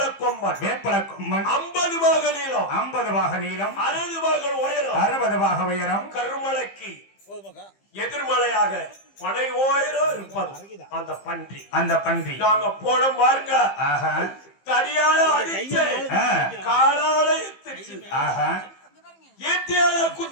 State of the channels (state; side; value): late; right; 15 ms